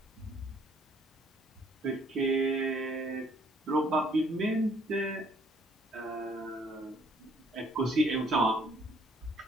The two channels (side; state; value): both; normal; correlation 0.62